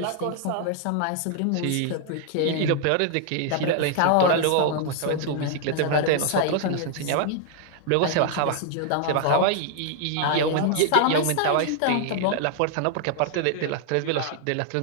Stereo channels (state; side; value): different; both; correlation 0.00